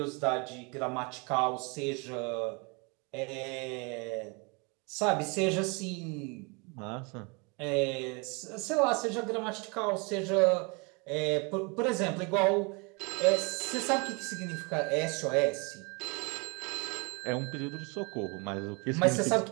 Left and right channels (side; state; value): left; quieter; 31.1 dB